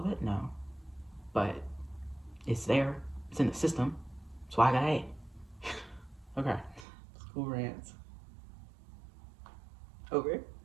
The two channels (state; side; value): drops out; left; at 6.9 s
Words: it? No. But it's there. It's in the system. That's why I got A. Okay. School rants. Over.